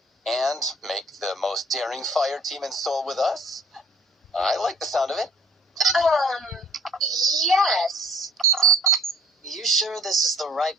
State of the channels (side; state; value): both; normal; correlation 0.57